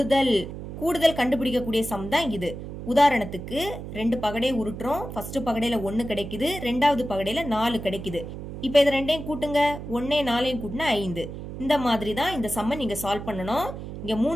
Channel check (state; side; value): noise; right; hum, 9 dB below the sound